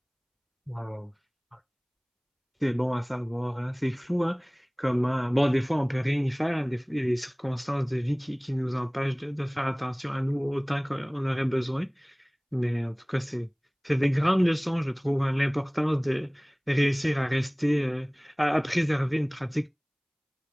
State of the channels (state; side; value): identical; both; correlation 1.00